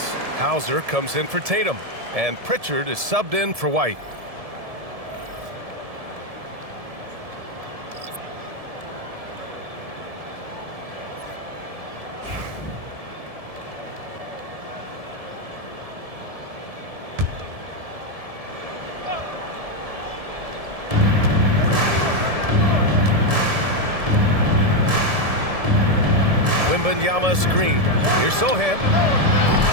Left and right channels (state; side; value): late; left; 1.7 ms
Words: Hauser comes in for Tatum. And Pritchard is subbed in for White. Wembanyama screen. Here's Sohan.